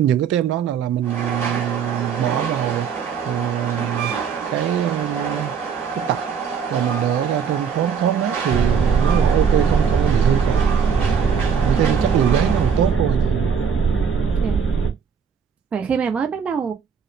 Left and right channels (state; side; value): quieter; left; 6.8 dB